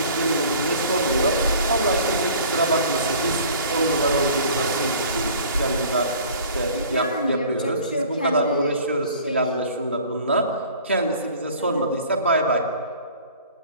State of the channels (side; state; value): both; inverted; correlation -0.47